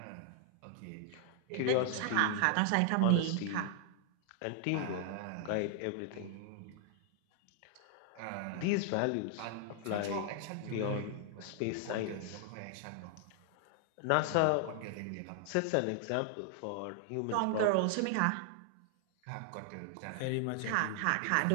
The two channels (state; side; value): different; both; correlation 0.00